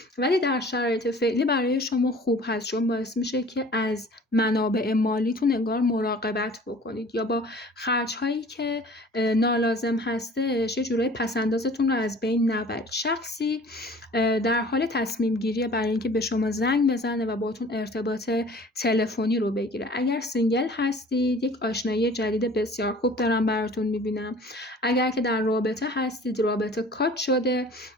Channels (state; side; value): normal; both; correlation 0.47